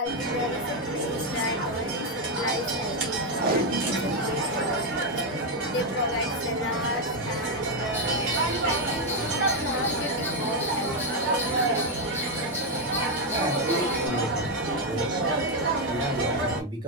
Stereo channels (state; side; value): normal; both; correlation 0.04